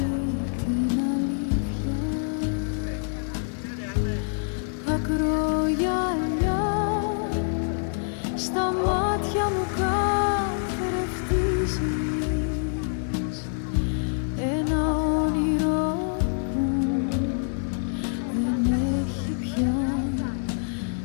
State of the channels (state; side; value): silent; right; digital silence